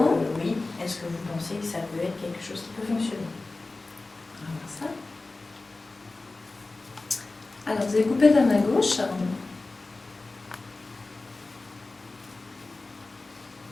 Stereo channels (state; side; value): quieter; right; 3.3 dB